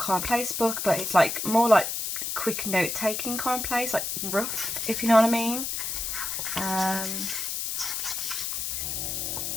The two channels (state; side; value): noise; left; hiss, 2 dB below the sound